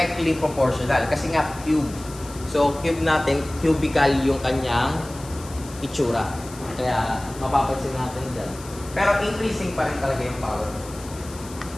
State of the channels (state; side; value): noise; left; hiss, 17 dB below the sound